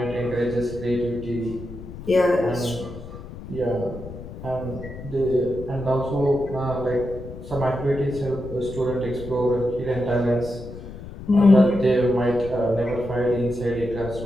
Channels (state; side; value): noise; left; rumble, 12 dB below the sound